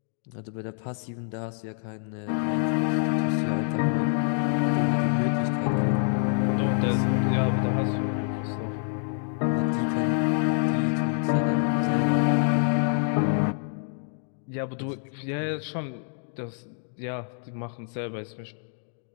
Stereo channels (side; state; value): right; silent; 60 dB below the other